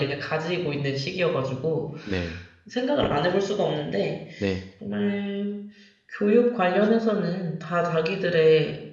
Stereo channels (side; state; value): both; identical; correlation 1.00